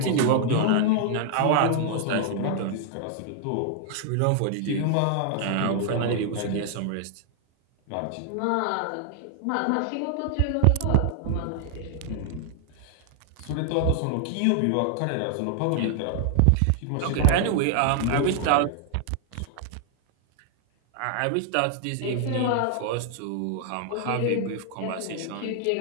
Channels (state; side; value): different; both; correlation 0.00